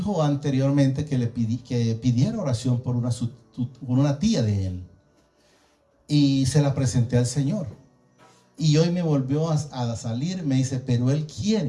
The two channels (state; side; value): identical; both; correlation 1.00